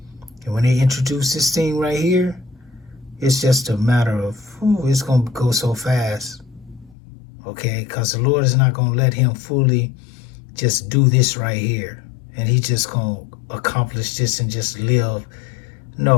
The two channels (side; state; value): right; drops out; at 7.0 s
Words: And when they introduce this thing right here, it's just a matter of, it's gonna go so fast. Okay, because the Lord is not gonna let him fully just do this right here, and he just gonna accomplish this and just live.